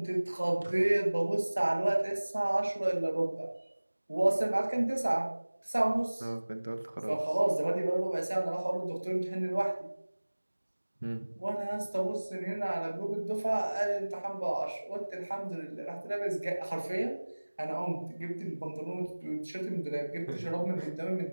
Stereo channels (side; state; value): both; inverted; correlation -1.00